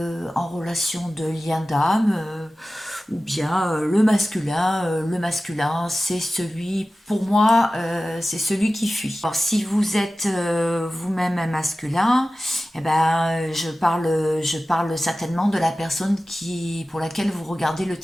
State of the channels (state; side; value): normal; both; correlation 0.96